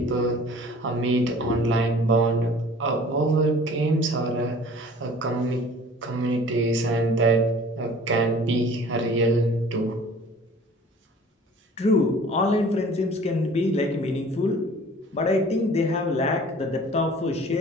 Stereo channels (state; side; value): normal; both; correlation 0.48